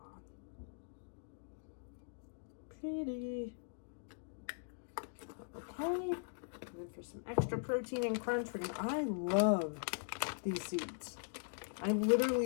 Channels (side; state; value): right; silent; digital silence